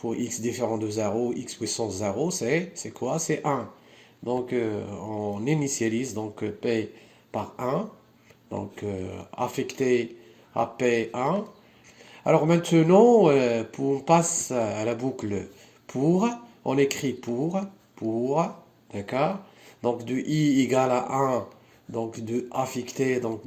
x différent de 0, x puissance 0, c'est quoi? C'est 1. On initialise P par 1, affecté à P1. Maintenant, on passe à la boucle pour, on écrit pour, d'accord? De i égale à 1, de affecté,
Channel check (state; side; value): identical; both; correlation 1.00